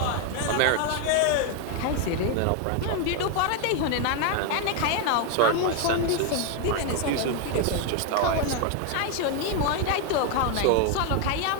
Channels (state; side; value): different; both; correlation 0.01